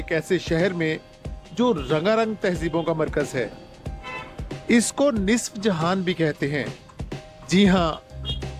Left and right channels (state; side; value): identical; both; correlation 1.00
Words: ऐसे शहर में जो रंगारंग तहजीबों का मरकज है। इसको निस्फ जहान भी कहते हैं। जी हाँ,